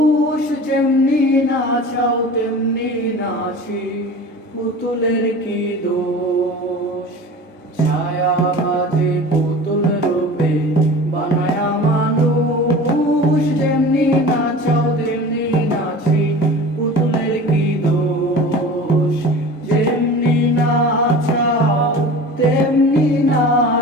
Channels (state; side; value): normal; both; correlation 0.37